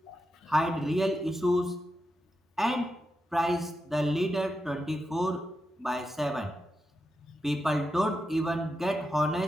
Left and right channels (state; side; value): normal; both; correlation 0.87